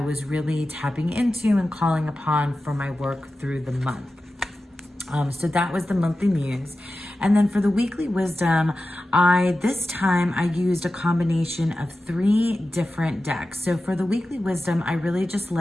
really tapping into and calling upon for my work through the month. So that was the monthly muse. And then for the weekly wisdom, this time I used a combination of 3 different decks. So for the weekly wisdom, I really just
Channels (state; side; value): normal; both; correlation 0.93